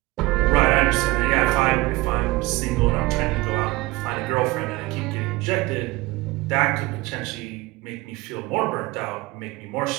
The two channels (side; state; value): left; quieter; 21.0 dB